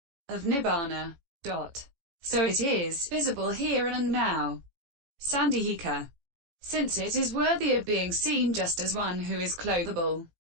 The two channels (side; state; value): left; late; 18 ms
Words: of nibbana. So it is visible here and now. Sandhika. Since it is worthy of being seen just as one who is clothable.